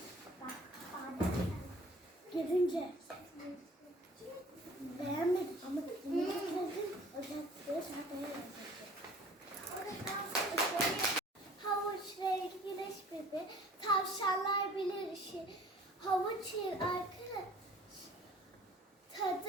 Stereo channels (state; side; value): normal; both; correlation 0.50